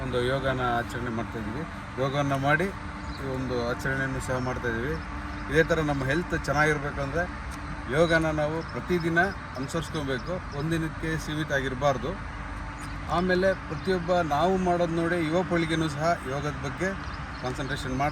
ಒಂದು ಯೋಗನ ಆಚರಣೆ ಮಾಡ್ತಾಯಿದ್ದೀವಿ. ಯೋಗವನ್ನು ಮಾಡಿ ಈ ಒಂದು ಆಚರಣೆಯನ್ನು ಸಹ ಮಾಡ್ತಾಯಿದ್ದೀವಿ. ಇದೇ ಥರ ನಮ್ಮ ಹೆಲ್ತ್ ಚೆನ್ನಾಗಿರ್ಬೇಕಂದ್ರೆ ಯೋಗನ ನಾವು ಪ್ರತಿದಿನ ಅನುಸರಿಸ್ಕೊಬೇಕು, ಒಂದಿನಕ್ಕೆ ಸೀಮಿತ ಆಗಿರಬಾರ್ದು. ಆಮೇಲೆ ಪ್ರತಿಯೊಬ್ಬ ನಾವು ಮಾಡೋದು ನೋಡಿ ಯುವ ಪೀಳಿಗೆನೂ ಸಹ ಯೋಗದ ಬಗ್ಗೆ ಕಾನ್ಸಂಟ್ರೇಷನ್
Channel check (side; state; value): both; identical; correlation 1.00